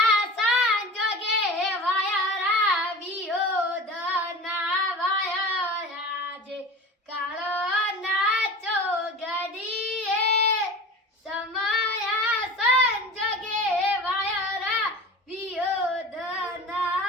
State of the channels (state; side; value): normal; both; correlation 0.35